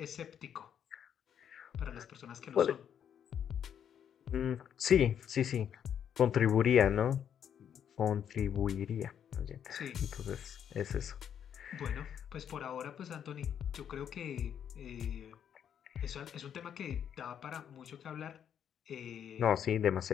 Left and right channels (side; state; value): right; quieter; 8.8 dB